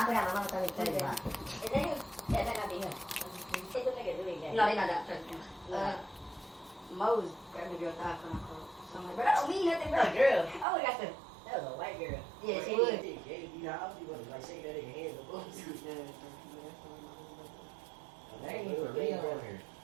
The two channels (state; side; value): drops out; left; at 10.7 s